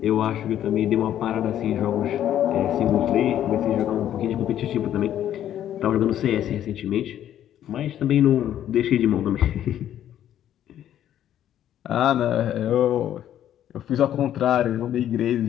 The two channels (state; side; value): quieter; right; 11.1 dB